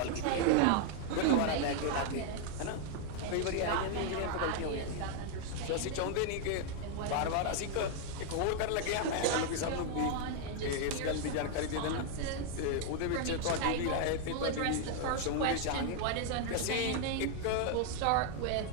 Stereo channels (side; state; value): both; different; correlation 0.00